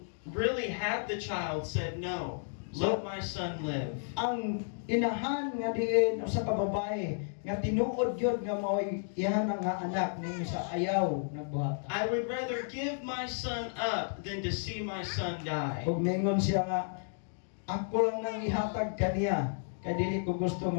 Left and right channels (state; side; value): silent; right; digital silence